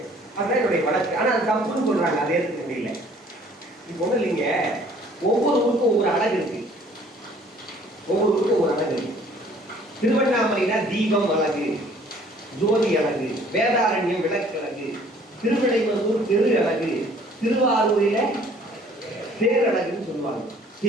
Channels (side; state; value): both; normal; correlation 0.56